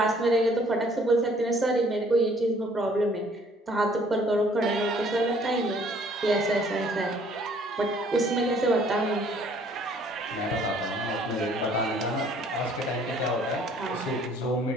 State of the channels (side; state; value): both; normal; correlation 0.59